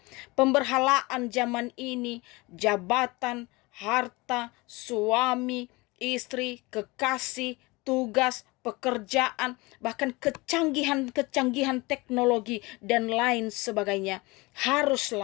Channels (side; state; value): right; quieter; 23.8 dB